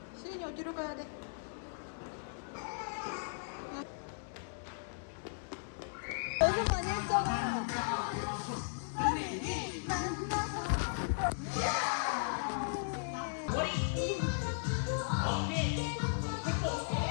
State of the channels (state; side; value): silent; right; digital silence